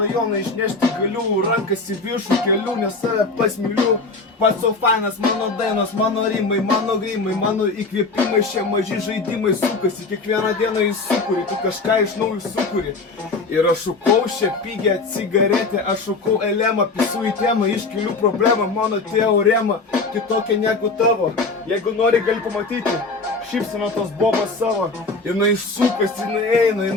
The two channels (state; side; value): quieter; right; 3.8 dB